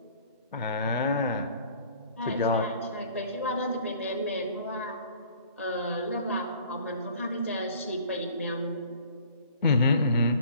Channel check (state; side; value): inverted; both; correlation -0.51